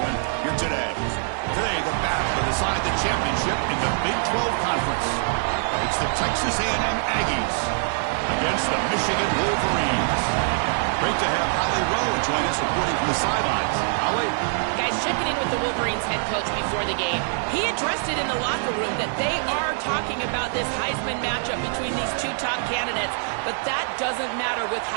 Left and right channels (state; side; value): silent; left; 62 dB below the other